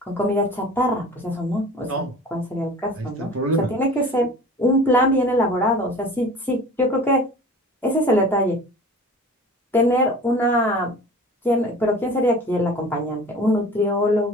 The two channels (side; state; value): both; normal; correlation 0.41